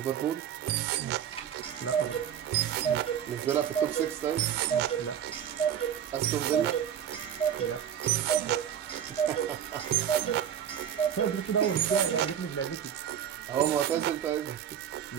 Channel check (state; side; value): quieter; left; 9.3 dB